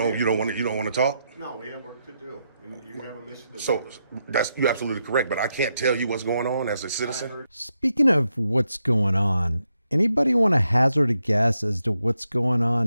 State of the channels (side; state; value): both; inverted; correlation -0.83